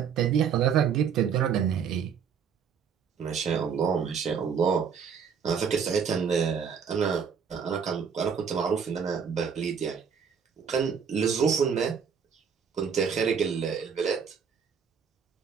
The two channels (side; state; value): left; quieter; 6.9 dB